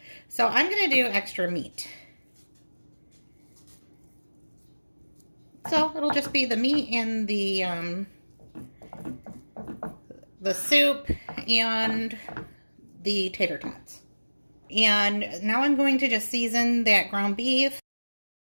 So I'm going to do extra meat. So it'll just be the meat and the soup and the tater tots. And now I'm going to just season that ground beef.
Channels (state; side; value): inverted; both; correlation -1.00